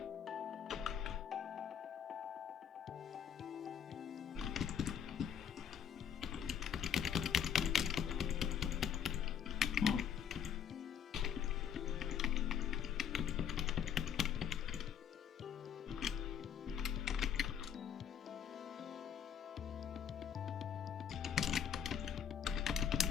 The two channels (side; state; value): right; quieter; 8.3 dB